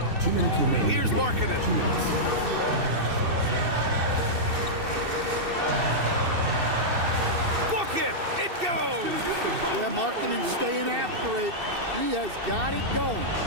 minutes remaining. Here's Markkanen. 2 minutes. Book it! It goes! Yeah, Markkanen staying after it. He has got it going.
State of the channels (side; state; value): left; late; 2.6 ms